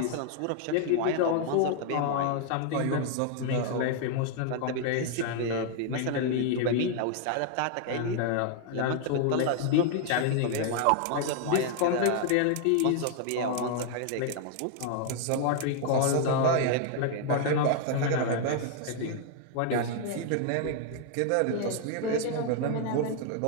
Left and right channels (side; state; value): both; different; correlation 0.00